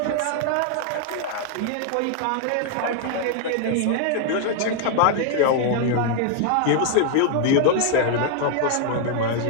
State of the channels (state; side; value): different; both; correlation 0.00